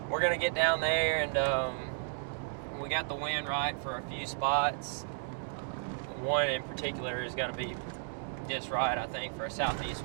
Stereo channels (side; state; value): left; silent; digital silence